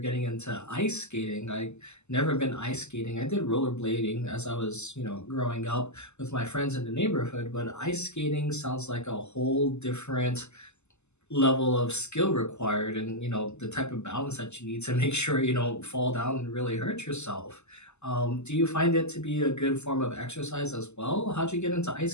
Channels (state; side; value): late; right; 0.82 ms